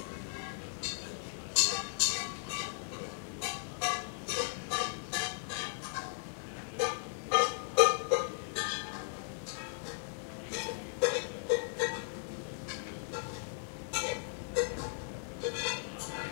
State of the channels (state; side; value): silent; right; 53 dB below the other